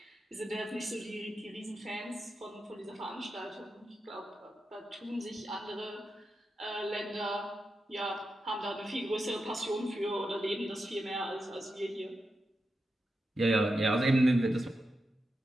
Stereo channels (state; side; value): normal; both; correlation 0.88